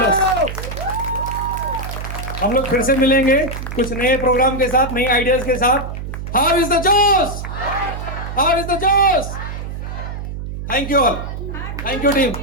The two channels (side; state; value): right; noise; hum, 7 dB below the sound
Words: हम लोग फिर से मिलेंगे कुछ नए प्रोग्राम के साथ, नई आइडियाज के साथ। हाउ इज द जोश? हाउ इज द जोश? Thank you all, thank you team.